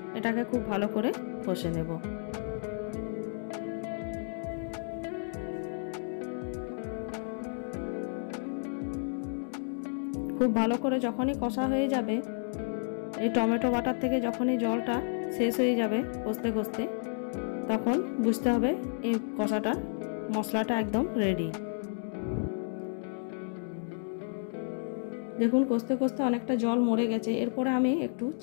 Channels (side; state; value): right; silent; digital silence